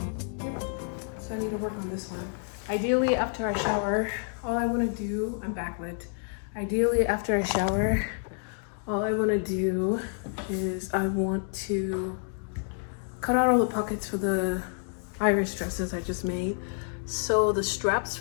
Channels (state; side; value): silent; right; 59 dB below the other